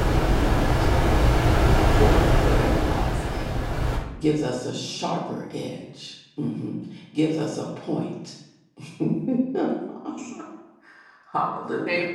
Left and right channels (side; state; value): both; identical; correlation 1.00